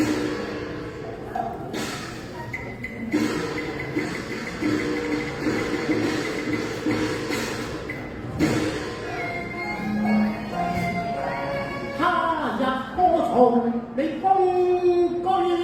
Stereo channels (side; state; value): both; identical; correlation 1.00